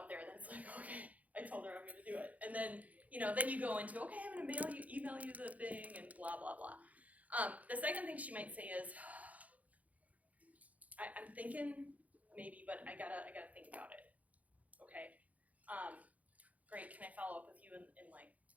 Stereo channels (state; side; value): late; left; 0.072 ms